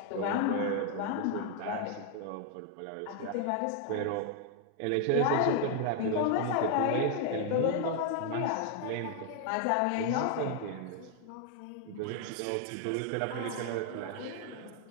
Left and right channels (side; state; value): both; different; correlation 0.00